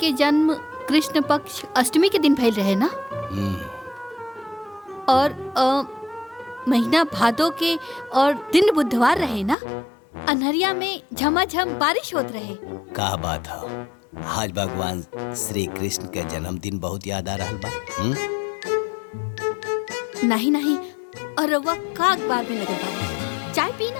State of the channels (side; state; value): right; drops out; at 9.6 s